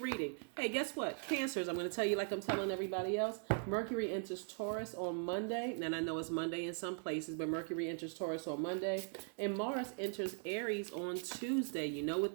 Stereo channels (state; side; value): silent; left; 51 dB below the other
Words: Hey, guess what? Cancers, I'm going to tell you like I'm telling everybody else. Mercury enters Taurus on Monday. And I know it's Monday in some places, but Mercury enters Taurus on Monday. And Mars enters Aries on Tuesday. You know what